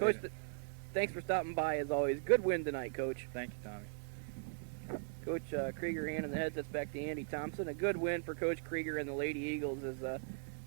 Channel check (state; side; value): silent; left; digital silence